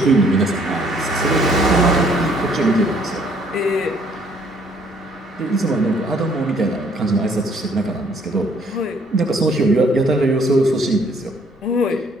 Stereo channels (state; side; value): normal; both; correlation 0.63